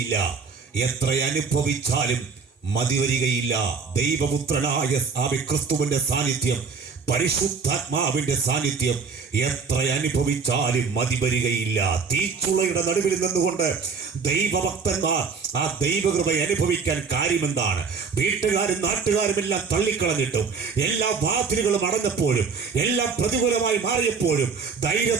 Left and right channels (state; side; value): quieter; left; 5.3 dB